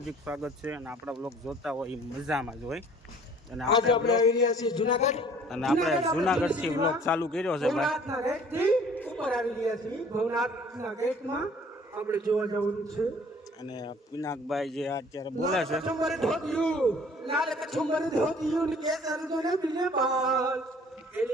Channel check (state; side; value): normal; both; correlation 0.53